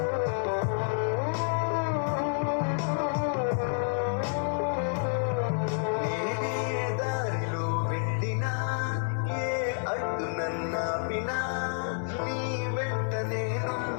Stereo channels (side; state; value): right; silent; 58 dB below the other